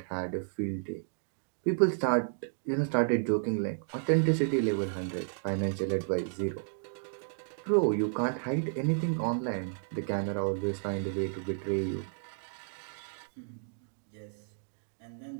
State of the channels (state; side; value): silent; left; digital silence